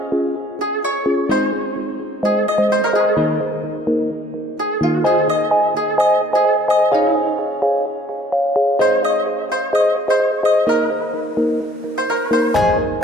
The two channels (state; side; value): normal; both; correlation 0.59